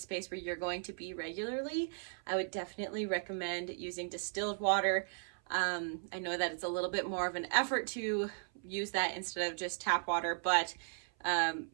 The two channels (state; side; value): silent; left; 53 dB below the other